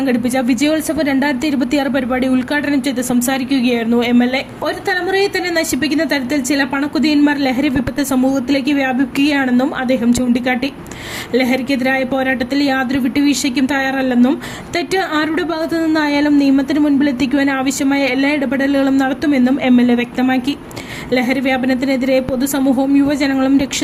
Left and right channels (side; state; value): both; identical; correlation 1.00